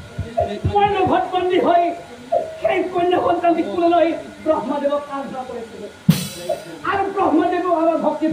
হৈ সেই কন্যা সন্তানটি কোলে লৈ ব্ৰহ্মদেৱক আৰাধনা কৰিছিলো আৰু ব্ৰহ্মদেৱো আমাৰ ভক্তিত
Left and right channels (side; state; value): both; identical; correlation 1.00